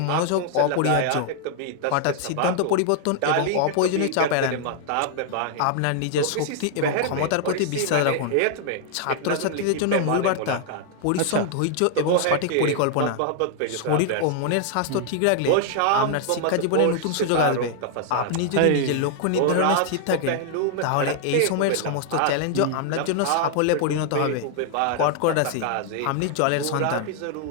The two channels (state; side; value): different; both; correlation 0.00